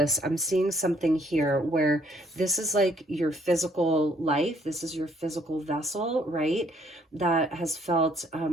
I'm seeing something here where this is like your physical life. This is your physical vessel, right? That has felt,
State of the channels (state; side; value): normal; both; correlation 0.65